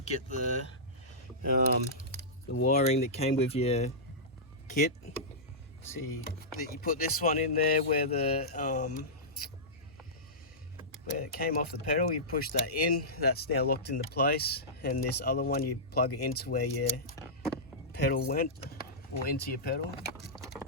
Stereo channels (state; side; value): normal; both; correlation -0.15